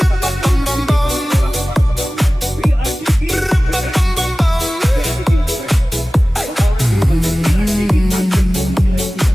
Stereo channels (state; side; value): normal; both; correlation 0.97